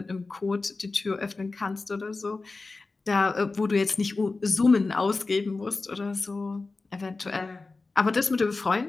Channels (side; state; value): right; quieter; 3.7 dB